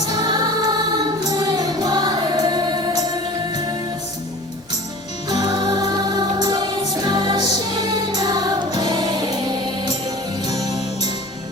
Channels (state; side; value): normal; both; correlation 0.41